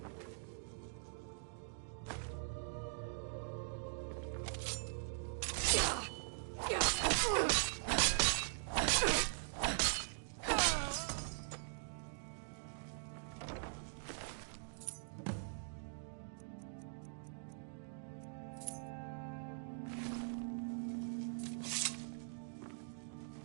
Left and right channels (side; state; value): left; silent; digital silence